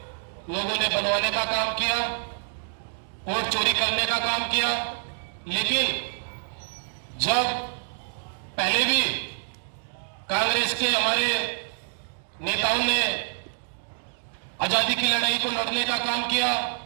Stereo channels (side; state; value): left; silent; digital silence